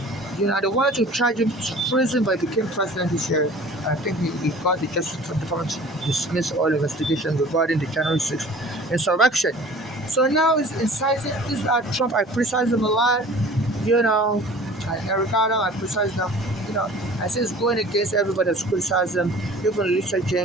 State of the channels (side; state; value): both; normal; correlation 0.45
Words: They wanted to charge him to prison, but he became president this year. I think he got the Justice Department to dismiss all investigations regarding the January 6th insurrection. So now he's inciting. This is Trump. I criticize him a lot. Eric Adam, I criticize him. I say it's going against everybody that's criticized him. Even Lisa